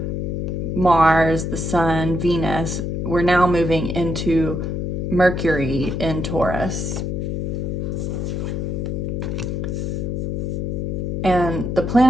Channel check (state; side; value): noise; left; hum, 2 dB below the sound